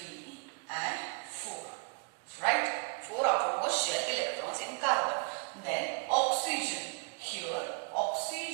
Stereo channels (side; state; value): left; quieter; 38.1 dB